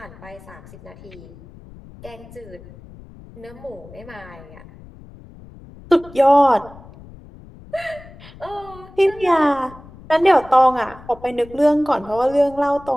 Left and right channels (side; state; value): left; noise; rumble, 20 dB below the sound